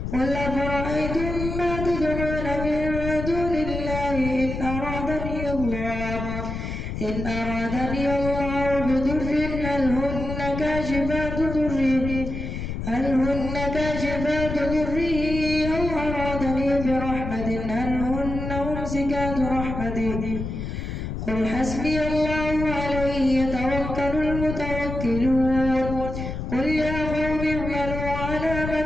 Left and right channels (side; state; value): left; noise; rumble, 5 dB below the sound